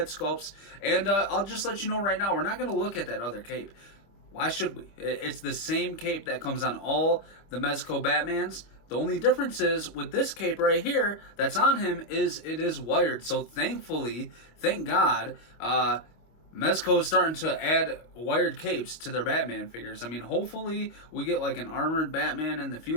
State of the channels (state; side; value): late; right; 25 ms